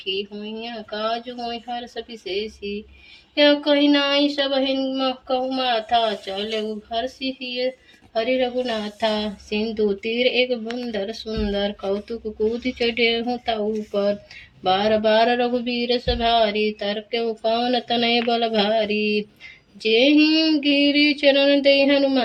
हुई काज हुई हर्ष विशेषी। या कही नाई सब हिम कहु माथा चले हर्षि हरि रघुनाथा। सिंधु तीर एक बुंदर सुंदर कौतुक कूद चढ़े हूँ ताऊ पर। बार बार रघुबीर सभारी तरक्यो पवन तनय बल भारी। जेहि गिरि चरण दे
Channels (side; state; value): both; identical; correlation 1.00